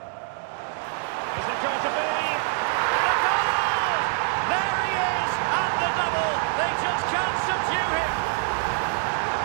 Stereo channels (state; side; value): silent; left; 62 dB below the other